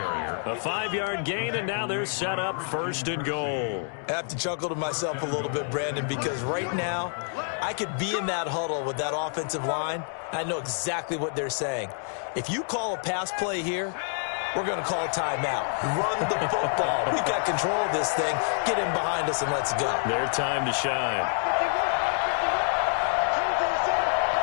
A 5-yard gain, and now they're set up 1st and goal. I have to chuckle to myself a little bit, Brandon, because right now I could be in that huddle with that offensive line. I know exactly what they're saying. If you call a pass play here, we're going to call a timeout. Run the football. We've got control of this thing. Get in behind us and let's go. Their time to shine.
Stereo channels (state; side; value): silent; right; 60 dB below the other